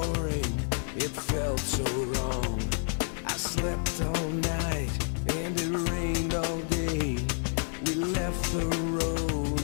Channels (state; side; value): silent; right; 58 dB below the other